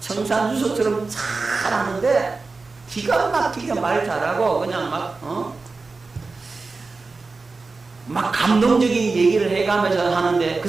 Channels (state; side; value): quieter; left; 3.9 dB